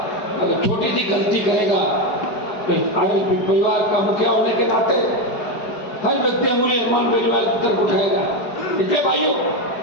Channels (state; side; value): late; right; 4.8 ms